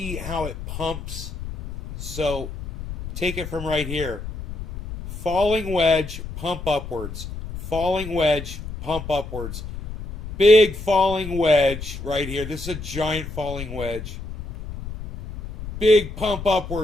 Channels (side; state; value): left; noise; rumble, 9 dB below the sound